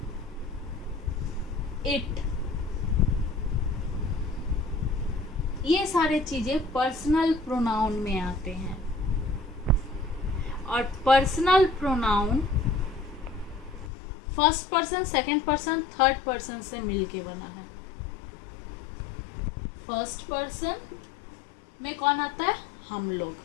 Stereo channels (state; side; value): drops out; right; at 13.9 s